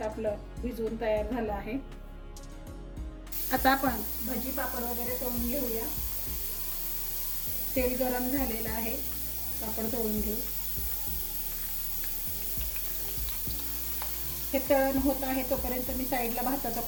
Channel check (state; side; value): identical; both; correlation 1.00